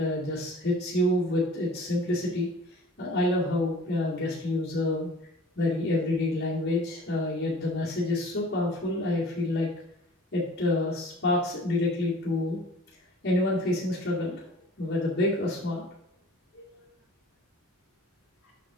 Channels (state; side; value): normal; both; correlation 0.47